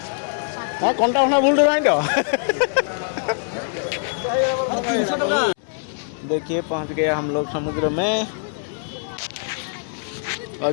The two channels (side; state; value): right; silent; 64 dB below the other